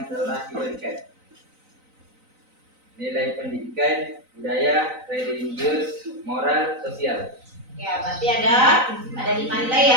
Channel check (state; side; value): late; left; 3.9 ms